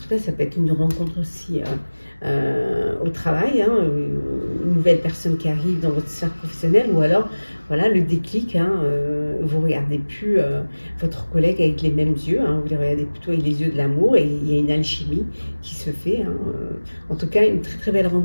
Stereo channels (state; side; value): inverted; both; correlation -1.00